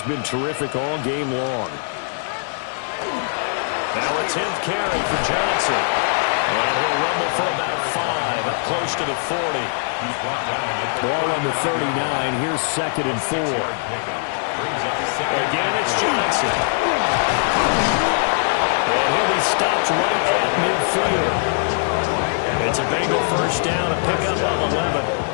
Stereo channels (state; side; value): silent; right; digital silence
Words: been terrific all game long. Now a 10th carry for Johnson. And he'll rumble for about 5, up close to the 40. Ball on the 39. Here's 2nd and 4. Again, it's Johnson. And he'll be stopped right at midfield. It's a Bengal first down, a pickup of 11. A